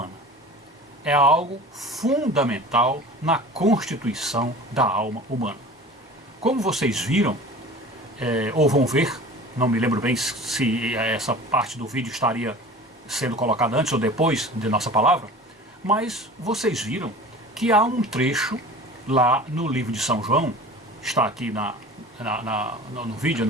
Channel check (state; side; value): normal; both; correlation 0.40